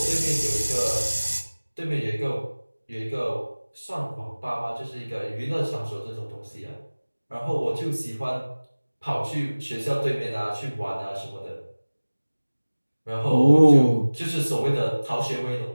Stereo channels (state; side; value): inverted; both; correlation -1.00